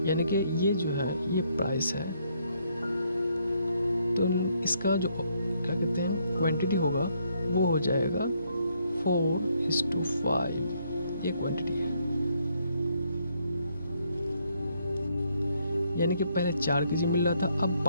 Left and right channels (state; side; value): inverted; both; correlation -0.72